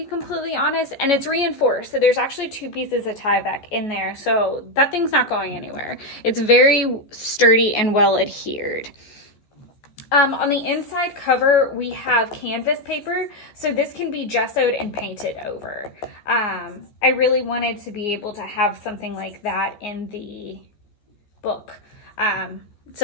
completely honest, and it's reinforced. So there's actually 2 pieces of Tyvek in there, so that thing's not going anywhere. It's very sturdy and well adhered. On the inside cover, we have canvas paper, so this can be gessoed and painted over. I really wanted to be able to have something like that in the book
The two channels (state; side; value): late; right; 14 ms